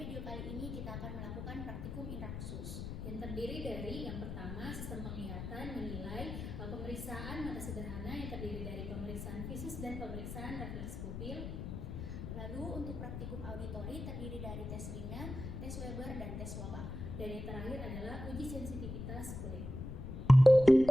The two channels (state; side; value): noise; left; rumble, 7 dB below the sound